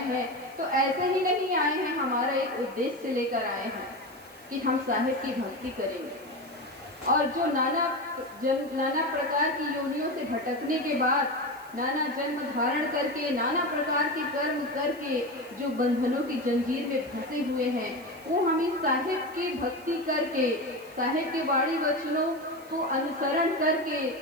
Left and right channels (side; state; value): right; noise; hiss, 24 dB below the sound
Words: हैं, तो ऐसे ही नहीं आए हैं, हमारा एक उद्देश्य लेकर आए हैं कि हम साहिब की भक्ति करेंगे। और जो नाना प्रकार की योनियों से भटकने के बाद, नाना जन्म धारण करके, नाना प्रकार के कर्म करके जो बंधनों की जंजीर में फंसे हुए हैं, वो हम इस साहिब की भक्ति करके, साहिब के वाणी वचनों को अनुसरण करके,